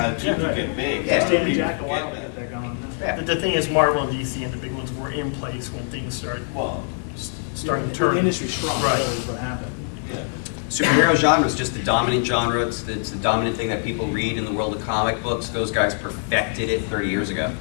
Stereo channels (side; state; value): right; silent; 58 dB below the other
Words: to Yeah, get right. big. Yeah. Stan and Jack a while to get that going. Yeah. The thing is, Marvel and DC and the big ones were in place when things started Well, starting to The turn. industry's strong, Right. that is what happened. yeah. Superhero genre is just the dominant genre. It's the dominant thing that people read in the world of comic books. Those guys perfected it 30 years ago.